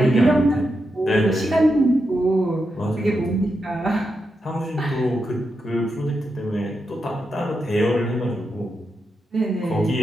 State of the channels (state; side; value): normal; both; correlation 0.86